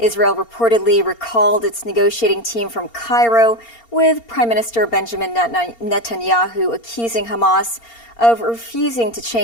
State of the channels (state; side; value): late; right; 4.3 ms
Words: reportedly recalled its negotiating team from Cairo, with Prime Minister Benjamin Netanyahu accusing Hamas of refusing to